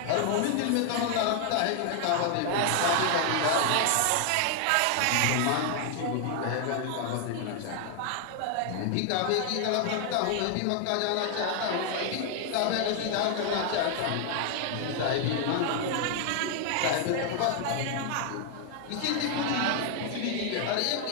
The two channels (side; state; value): both; different; correlation 0.00